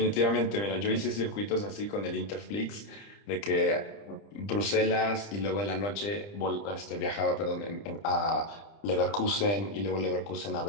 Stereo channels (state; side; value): late; right; 30 ms